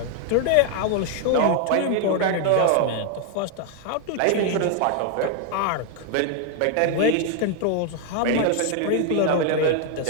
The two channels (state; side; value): different; both; correlation 0.00